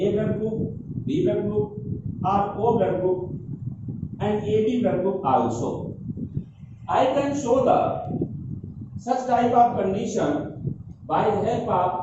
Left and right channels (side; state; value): both; identical; correlation 1.00